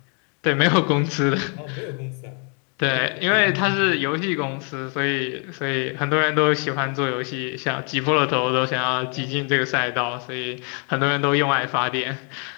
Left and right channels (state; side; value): quieter; right; 38.0 dB